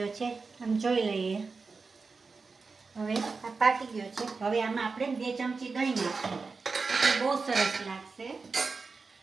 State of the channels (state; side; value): quieter; left; 4.4 dB